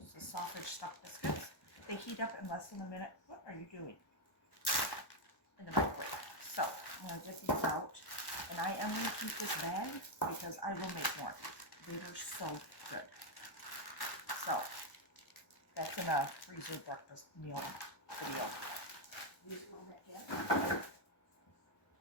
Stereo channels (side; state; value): right; late; 1.1 ms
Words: the sausage stuffed biscuits. They heat up in less than a minute. What are you doing? In the microwave. So I'm going to get these out. And I am going to keep this bag because I will make more. They were so good. So that's in a freezer breakfast meal video. Use a little bit, yeah.